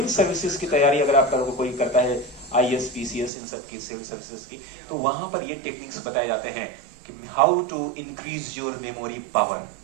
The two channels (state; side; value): drops out; left; at 3.3 s